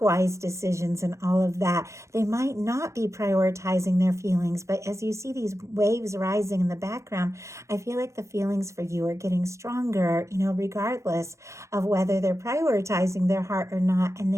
wise decisions and all of that, they might not be prioritizing their feelings. But as you see these waves rising in the background, I feel like the feelings for you are getting stronger, regardless of whether they're prioritizing their heart or not. And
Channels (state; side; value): late; left; 0.14 ms